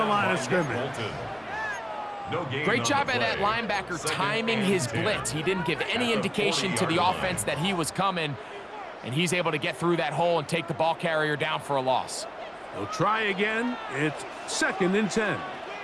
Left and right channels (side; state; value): both; identical; correlation 1.00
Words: line of scrimmage. Great job by that linebacker timing his blitz. He didn't give any indication to the offense that he was coming, and he's able to get through that hole and take the ball carrier down for a loss. They'll try again. It's 2nd and 10.